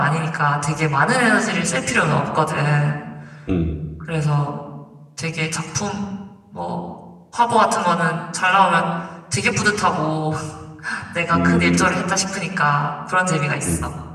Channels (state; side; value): identical; both; correlation 1.00